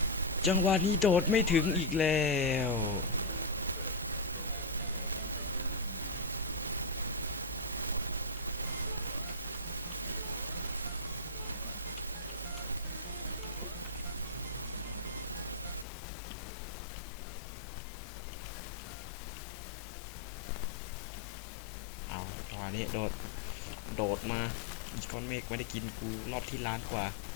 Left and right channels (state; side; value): drops out; right; at 15.9 s